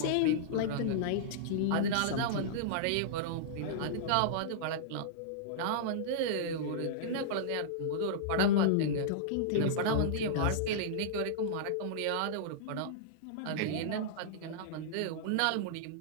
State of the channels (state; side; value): different; both; correlation -0.02